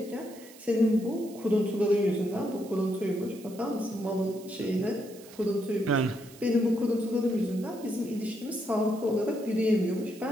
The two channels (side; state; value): right; noise; hiss, 21 dB below the sound